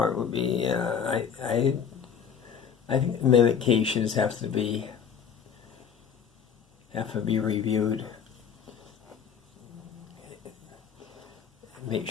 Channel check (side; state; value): right; quieter; 7.4 dB